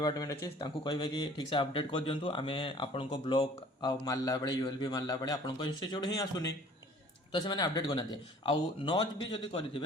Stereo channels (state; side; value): normal; both; correlation 0.51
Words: अच्छे कहे कि ठीक से अपडेट कर दिंतु आम आपण ब्लॉक आ मारला बेले यूएलबी मारला बेले आपण इंस्टीट्यूट ही आसुनी तो से अपडेट करना आउ नच भी जब